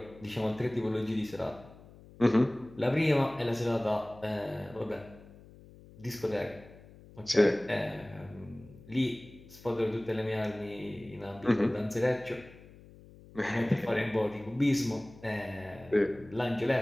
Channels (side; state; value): left; noise; hum, 21 dB below the sound